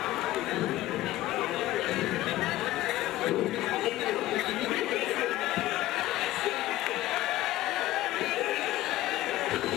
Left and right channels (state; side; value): quieter; right; 15.8 dB